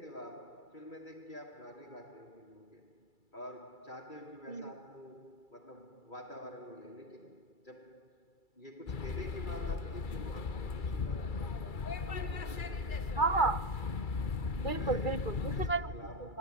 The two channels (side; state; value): right; late; 2.3 ms